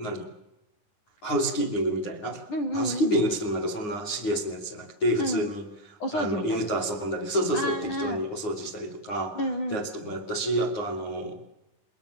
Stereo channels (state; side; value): late; right; 9.6 ms